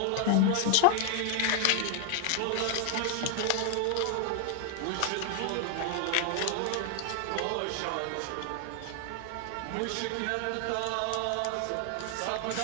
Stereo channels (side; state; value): both; different; correlation 0.01